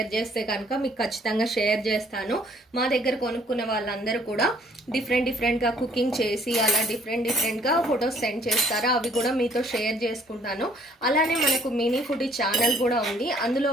చేస్తే కనుక మీకు ఖచ్చితంగా షేర్ చేస్తాను. మా దగ్గర కొనుక్కున్న వాళ్ళందరూ కూడా డిఫరెంట్గా కుకింగ్ చేసి అలా డిఫరెంట్గా ఫొటోస్ సెండ్ చేస్తారు. అవి కూడా మీతో షేర్ చేసుకుంటాను. అలానే మనకు మినీ ఫుడీ ఛానల్ కూడా ఉంది. అందులో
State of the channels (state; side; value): normal; both; correlation 0.61